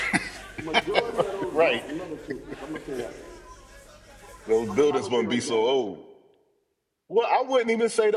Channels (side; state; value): both; identical; correlation 1.00